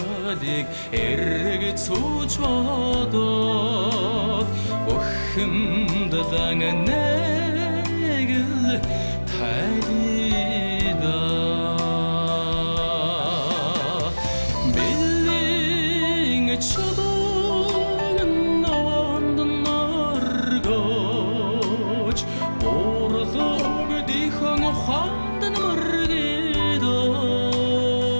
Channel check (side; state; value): both; inverted; correlation -1.00